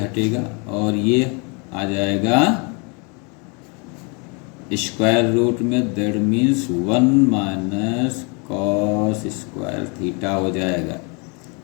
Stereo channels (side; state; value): right; quieter; 33.0 dB